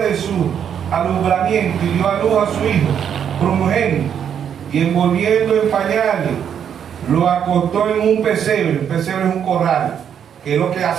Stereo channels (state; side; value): quieter; left; 8.5 dB